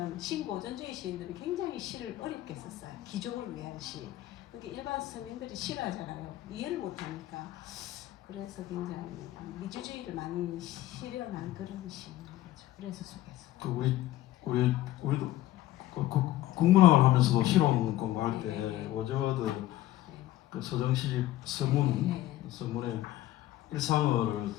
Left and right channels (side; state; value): right; quieter; 14.8 dB